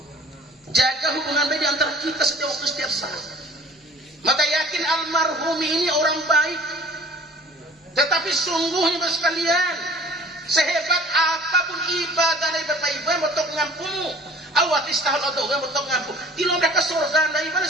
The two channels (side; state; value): both; normal; correlation 0.48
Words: Jaga hubungan baik di antara kita setiap waktu setiap saat. Maka yakin almarhum ini orang baik. Tetapi sungguhnya sekalian, sehebat apapun ibadah dari Bapak Ibu yang betul ngampung, awat istahal atau yang betul ngampung, dilomba ke surga dari mana